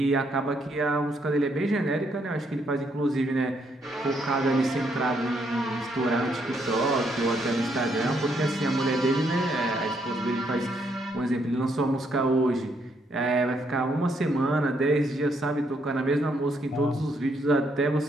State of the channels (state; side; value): normal; both; correlation 0.74